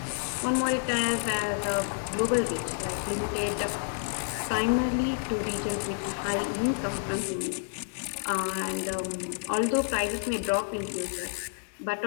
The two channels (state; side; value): silent; right; digital silence